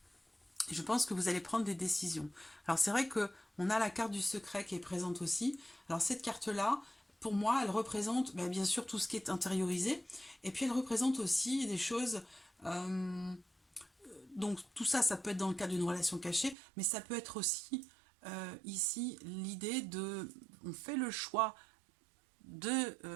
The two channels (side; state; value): left; drops out; at 16.6 s